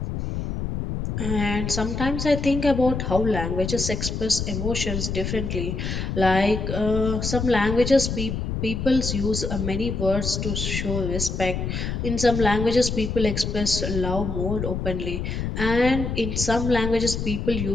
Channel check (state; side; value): noise; left; rumble, 3 dB below the sound